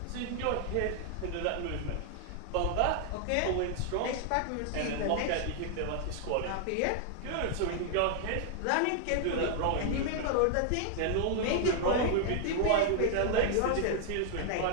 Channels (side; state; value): both; different; correlation 0.00